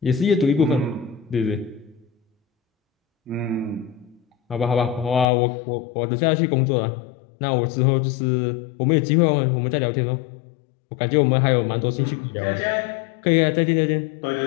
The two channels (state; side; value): drops out; right; at 5.2 s